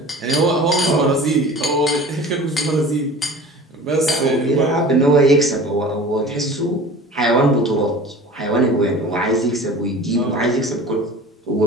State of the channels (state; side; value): normal; both; correlation 0.41